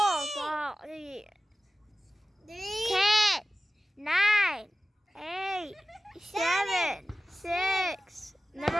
5, 3. 10, 9, 8, 7, 6.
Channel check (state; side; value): normal; both; correlation 0.96